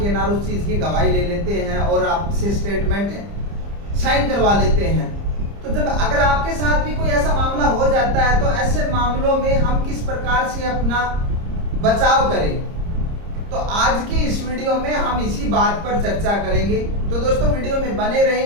ना उस चीज़ की गवाही ले लेते हैं और आपसे स्टेटमेंट साइन करवा लेते हैं। तो जब अगर आपके साथ भी कोई ऐसा मामला हो जाता है तो ऐसे मामलों में हम किस प्रकार से अपना बचाव करें, तो आज की इस वीडियो में हम इसी बात पर चर्चा करेंगे। तो दोस्तों वीडियो में बने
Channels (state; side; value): late; left; 30 ms